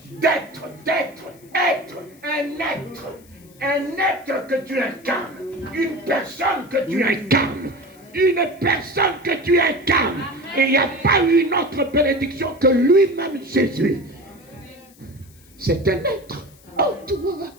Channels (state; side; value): noise; left; hiss, 27 dB below the sound